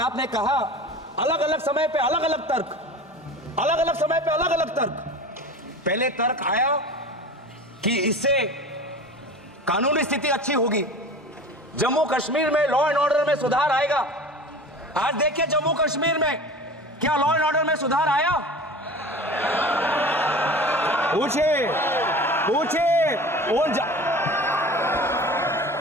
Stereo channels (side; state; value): both; normal; correlation 0.36